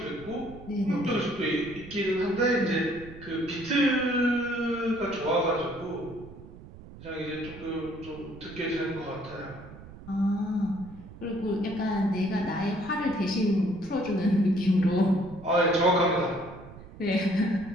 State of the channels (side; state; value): right; noise; rumble, 17 dB below the sound